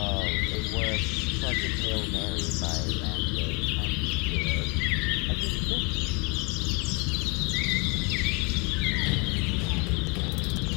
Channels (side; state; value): right; quieter; 31.2 dB